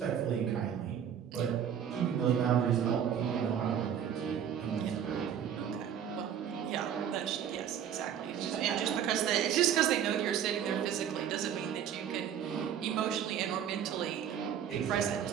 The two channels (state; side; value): quieter; left; 9.0 dB